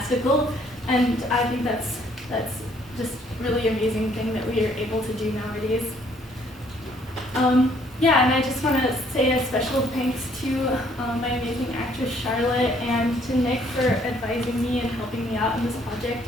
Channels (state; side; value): normal; both; correlation 0.64